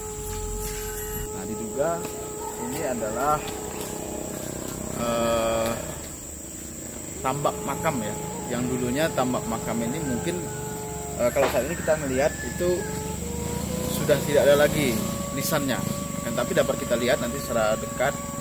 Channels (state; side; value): identical; both; correlation 1.00